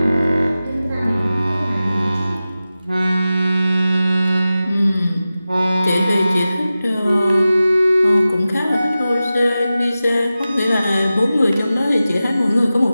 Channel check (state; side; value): inverted; both; correlation -0.94